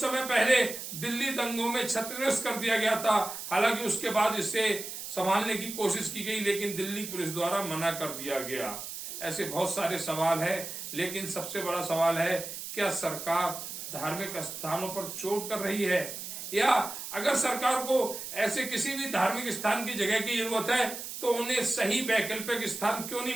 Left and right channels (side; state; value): right; noise; hiss, 8 dB below the sound